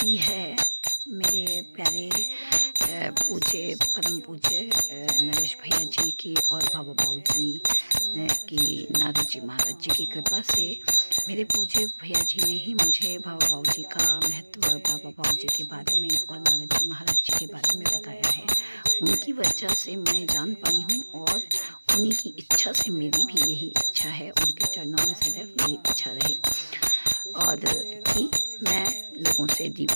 है मेरे प्यारे पूज्य परम पूज्य नरेश भैया जी की और बाबा बाबू जी की, नारद जी महाराज जी की कृपा से मेरे पूज्य भैया जी ने ही मुझे बाबा बाबू जी का महत्व, बाबा बाबू जी के बारे में और नारद जी महाराज जी के बारे में बताया है। उनकी वजह से मैं जान पाई हूँ और उन्हीं की इच्छा से मेरी भी यही इच्छा है, उनके चरणों में सदैव मेरी इच्छा रहे और कि मैं लोगों से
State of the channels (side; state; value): both; inverted; correlation -1.00